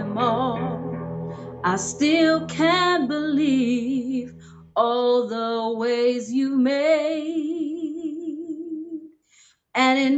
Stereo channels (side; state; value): both; identical; correlation 1.00